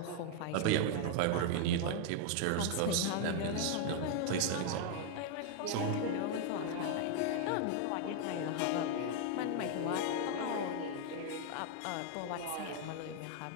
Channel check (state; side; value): different; both; correlation 0.00